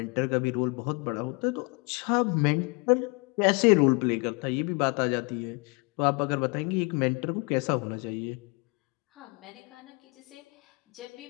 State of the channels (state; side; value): quieter; right; 30.1 dB